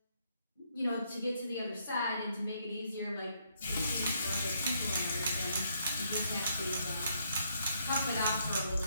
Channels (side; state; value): both; inverted; correlation -0.72